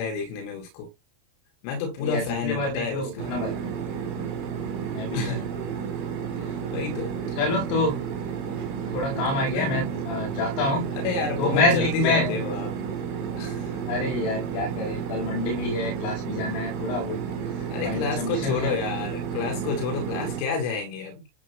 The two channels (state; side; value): late; right; 29 ms